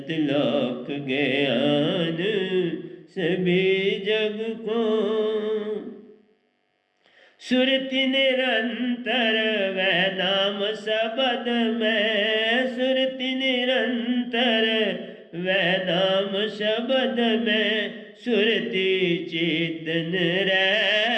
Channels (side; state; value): both; identical; correlation 1.00